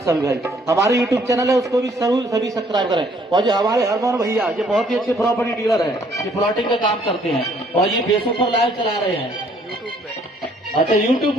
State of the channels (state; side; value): normal; both; correlation 0.63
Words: भाई। हमारे यूट्यूब चैनल है उसको भी जरूर सभी सब्सक्राइब करें। और जो हमारे हरमोहन भैया ये बहुत ही अच्छे प्रॉपर्टी डीलर है, ये प्लॉटिंग का काम करते हैं और ये फेसबुक पर लाइव चला रहे हैं। अच्छा यूट्यूब